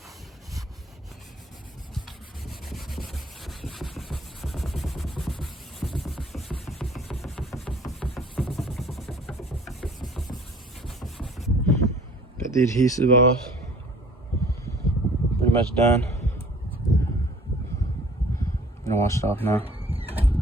Got the adhesive off. Pretty much done. I'm gonna wash it off now.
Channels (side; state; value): both; normal; correlation 0.52